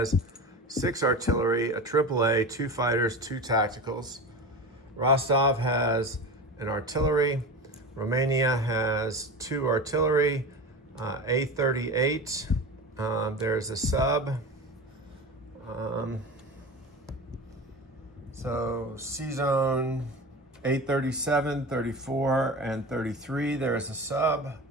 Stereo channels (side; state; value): both; normal; correlation 0.29